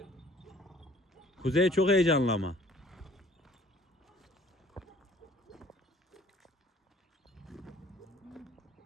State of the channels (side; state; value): both; normal; correlation 0.55